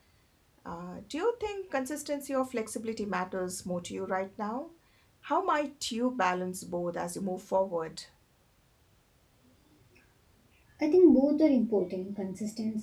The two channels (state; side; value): identical; both; correlation 1.00